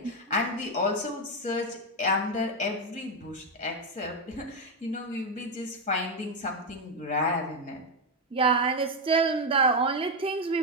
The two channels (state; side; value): normal; both; correlation 0.06